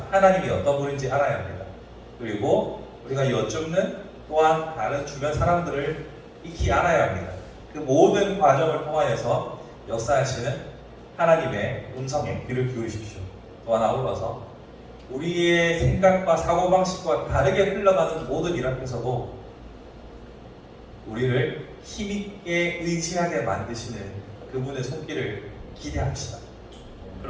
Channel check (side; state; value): both; identical; correlation 1.00